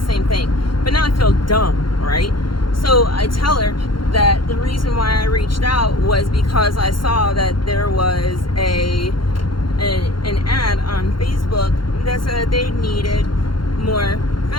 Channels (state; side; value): late; right; 0.72 ms